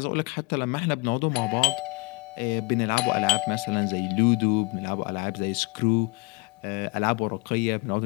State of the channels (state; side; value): quieter; right; 26.0 dB